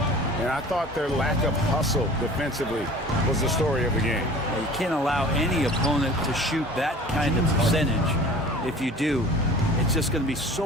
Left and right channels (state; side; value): normal; both; correlation 0.44